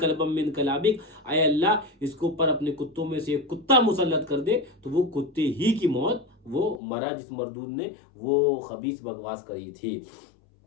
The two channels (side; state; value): right; drops out; at 6.8 s